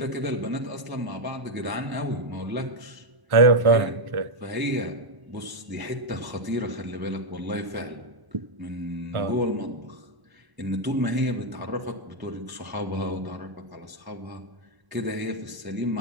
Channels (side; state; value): left; late; 1.0 ms